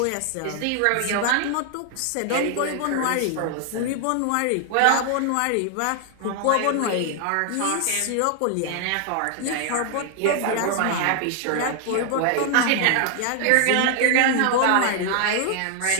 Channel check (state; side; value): different; both; correlation 0.00